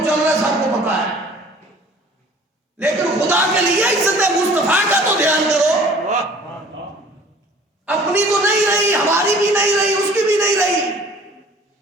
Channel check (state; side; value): normal; both; correlation 0.50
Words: چل رہا ہے سب کو پتا ہے، لیکن خدا کے لیے عزت مصطفیٰ کا تو دھیان کرو. اپنی تو نہیں رہی، ہماری بھی نہیں رہی، اس کی بھی نہیں رہی،